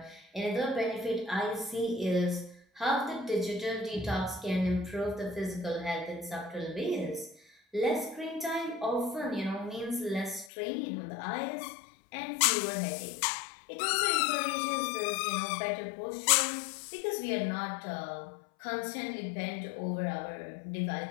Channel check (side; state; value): right; drops out; at 10.5 s